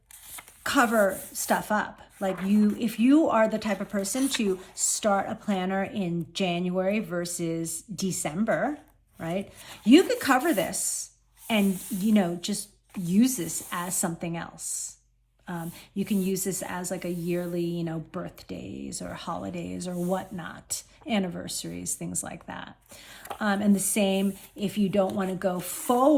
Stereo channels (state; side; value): identical; both; correlation 1.00